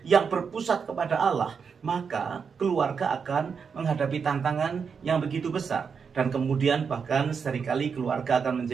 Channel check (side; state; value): left; quieter; 6.1 dB